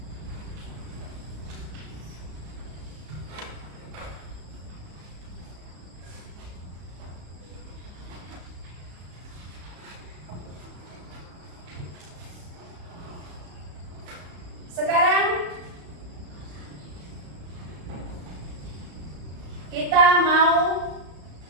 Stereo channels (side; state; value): left; late; 34 ms